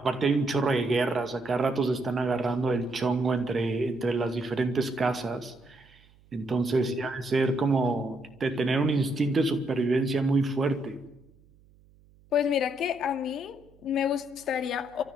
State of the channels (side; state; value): right; noise; hum, 29 dB below the sound